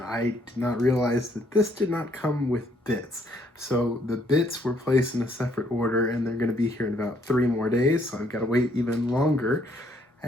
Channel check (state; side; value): normal; both; correlation 0.68